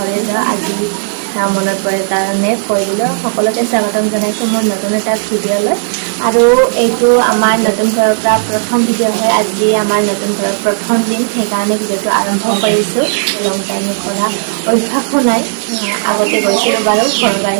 যাওঁ। আজি মনত পৰে কাৰণে কৈ দিলোঁ। সকলোকে স্বাগতম জনাইছোঁ মোৰ নতুন এটা ভিডিঅ'লৈ। আৰু এইটো আমাৰ নতুন ঘৰৰ পৰা প্ৰথম ভিডিঅ' হয়। আজি আমাৰ নতুন ঘৰৰ প্ৰথম দিন, সেইকাৰণে ভিডিঅ'টো আৰম্ভ কৰিছোঁ। লং জাৰ্ণি কৰা অভ্যাসো নাই, আগতে গৈছিলোঁ বাৰু, ঘৰৰ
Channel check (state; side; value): silent; left; digital silence